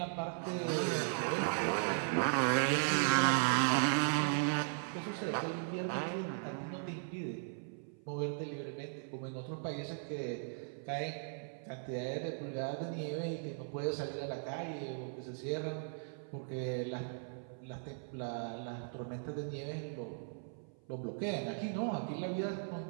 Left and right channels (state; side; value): silent; left; 53 dB below the other